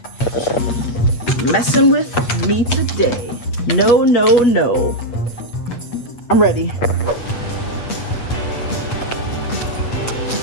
messing with me today. No, no, no. I'm ready.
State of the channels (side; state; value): right; late; 8.0 ms